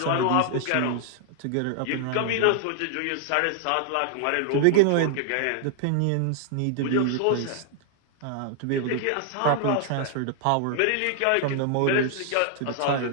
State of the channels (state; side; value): different; both; correlation -0.01